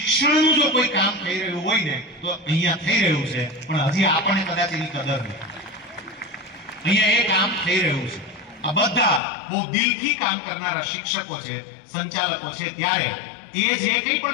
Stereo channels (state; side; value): drops out; right; at 9.2 s